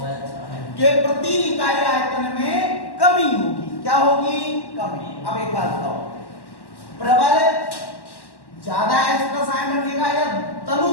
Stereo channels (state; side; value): late; right; 1.1 ms